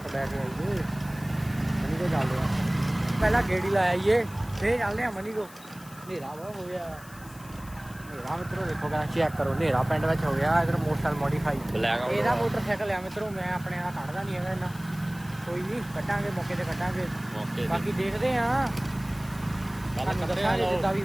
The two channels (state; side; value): noise; left; hiss, 21 dB below the sound